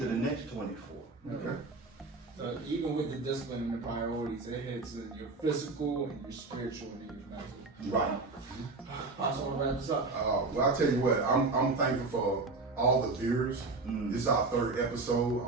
the next 24. Okay. So even with the discipline and the priorities, it hits your physical and your spiritual and your mental. Right. Pastor, I want to wrap this up. Well, I'll tell you what, I'm thankful for all the viewers. This is our 3rd episode.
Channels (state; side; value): quieter; left; 3.6 dB